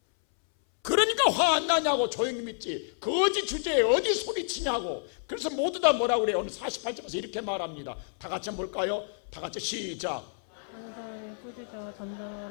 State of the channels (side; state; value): right; silent; 58 dB below the other